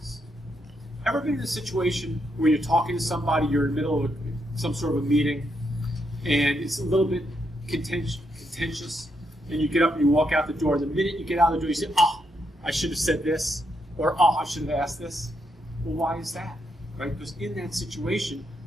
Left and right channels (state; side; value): normal; both; correlation 0.79